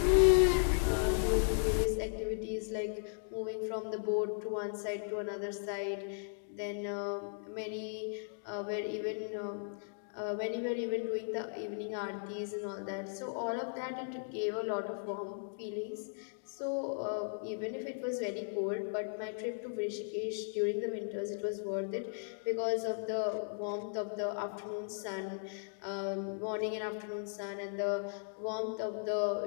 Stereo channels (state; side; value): silent; right; digital silence